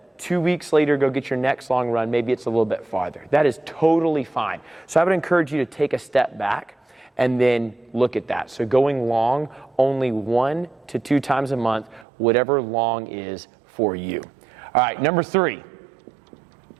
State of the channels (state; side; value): drops out; left; at 12.1 s